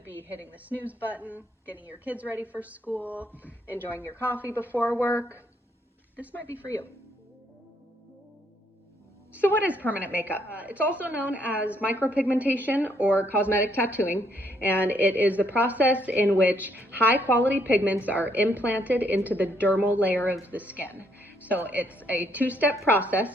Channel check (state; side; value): normal; both; correlation 0.71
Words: be hitting the snooze button, getting your kids ready for school, enjoying your coffee before work, this might be for you. So what is permanent makeup? It's also known as micropigmentation or cosmetic tattooing, and it is the process in which high quality pigments are implanted into the dermal layer of the skin. So it's a two-step